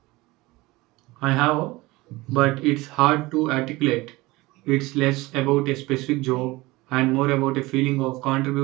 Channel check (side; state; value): left; quieter; 21.0 dB